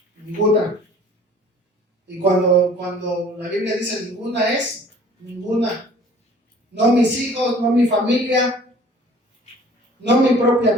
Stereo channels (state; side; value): normal; both; correlation 0.51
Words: ninguna. Y cuando la Biblia dice ninguna, es ninguna. No mis hijos, no mi familia, no mi propia